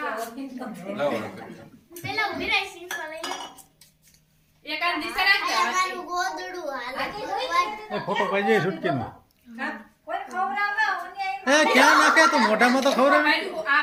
લાવો એક આ દિશા રાખજે. એ ફોટો પાડજે છૂટકીનો. એ ક્યાં નાખે તો મોઢામાં તો ખવડાવે. ભાઈ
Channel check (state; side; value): identical; both; correlation 1.00